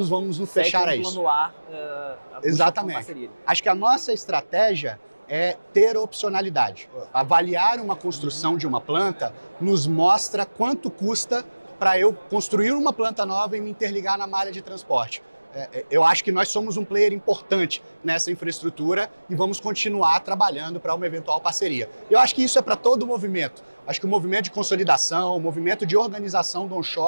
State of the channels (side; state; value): both; inverted; correlation -1.00